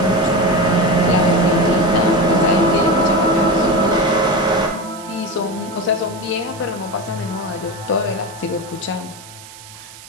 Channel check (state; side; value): noise; right; hiss, 18 dB below the sound